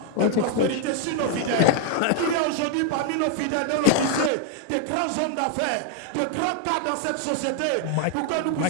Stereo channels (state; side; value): different; both; correlation 0.00